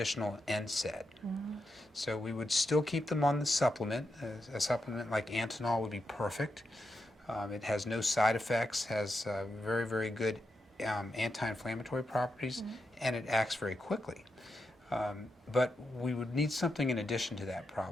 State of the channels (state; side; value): normal; both; correlation 0.86